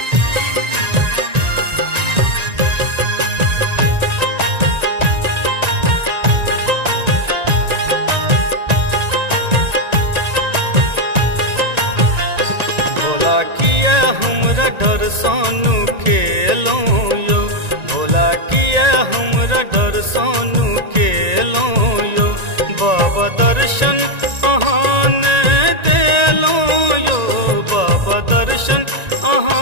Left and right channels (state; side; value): late; left; 1.9 ms